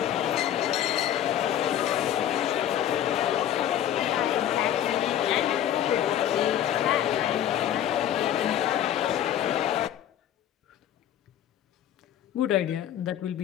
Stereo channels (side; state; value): right; quieter; 11.0 dB